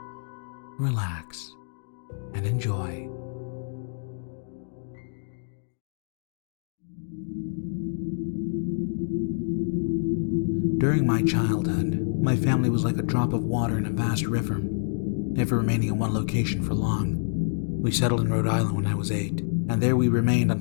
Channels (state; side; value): silent; right; digital silence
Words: relax, and enjoy. During my childhood, my family was like a drop of water in a vast river, never remaining in one location for long. We settled in Rhode Island when I was 8, and there we remained